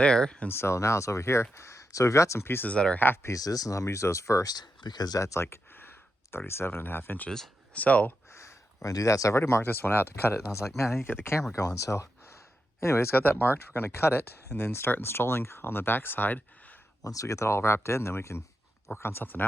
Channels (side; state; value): both; normal; correlation 0.87